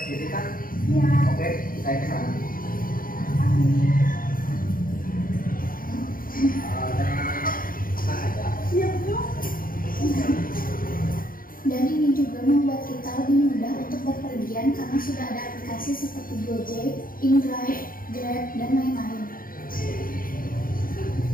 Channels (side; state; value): right; late; 0.41 ms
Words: jadi kan? Ya. Oke, saya ke sana. Tenang aja. Siap dong. Dan ini juga membuat kita lebih mudah untuk berpergian karena sudah ada aplikasi seperti Gojek, InDrive, Grab, dan lain-lain.